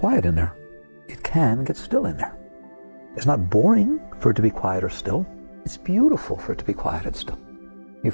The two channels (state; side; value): inverted; both; correlation -1.00